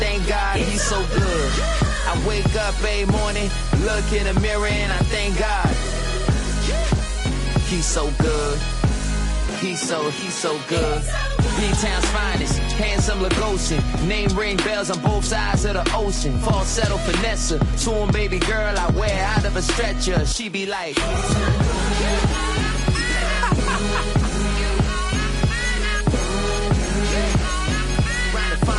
God he's so good. I wake up every morning, look in the mirror and I thank God. He's so good. He's so good. B-Town's finest, handsome Lagosian. Name ring bells on both sides of the ocean. Falsetto finesse, swoon baby girl I wear out of a stretcher. She be like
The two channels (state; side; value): identical; both; correlation 1.00